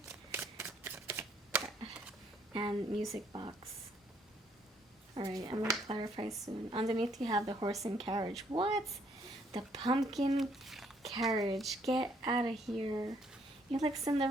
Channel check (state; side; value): normal; both; correlation 0.67